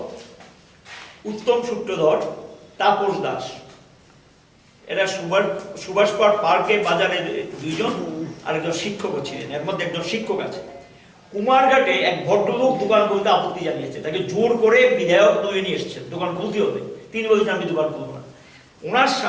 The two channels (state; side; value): identical; both; correlation 1.00